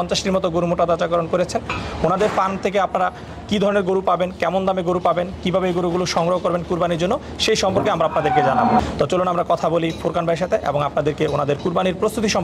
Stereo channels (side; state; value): both; identical; correlation 1.00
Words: মতো গরু মোটাতাজাকরণ করেছেন। ওনাদের ফার্ম থেকে আপনারা কী ধরনের গরু পাবেন, কেমন দামে গরু পাবেন, কীভাবে এই গরুগুলো সংগ্রহ করবেন কুরবানির জন্য, সেই সম্পর্কে আমরা আপনাদেরকে জানাবো। তো চলুন আমরা কথা বলি ফুরকান ভাইয়ের সাথে এবং আপনাদেরকে ওনাদের কুরবানির প্রস্তুতি